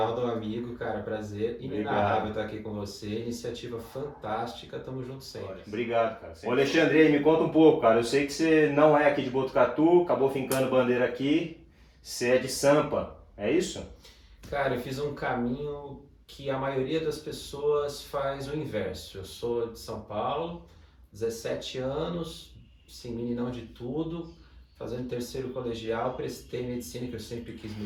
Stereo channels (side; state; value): both; identical; correlation 1.00